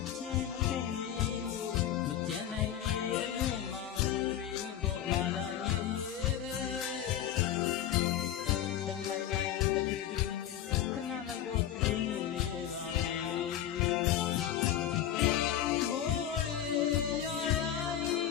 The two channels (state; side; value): quieter; right; 10.9 dB